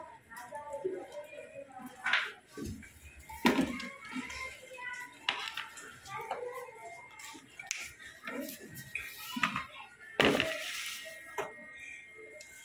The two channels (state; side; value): identical; both; correlation 1.00